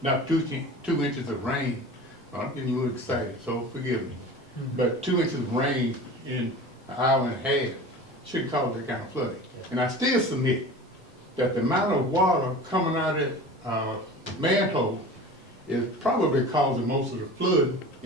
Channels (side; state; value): both; normal; correlation 0.36